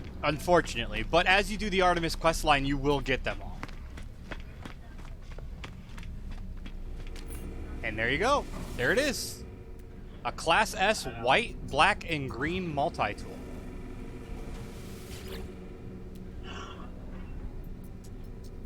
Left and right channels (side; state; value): both; identical; correlation 1.00